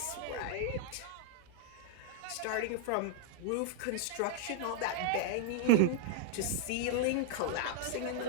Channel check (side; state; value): both; different; correlation -0.01